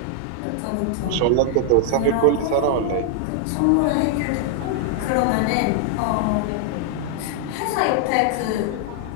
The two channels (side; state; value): both; different; correlation -0.01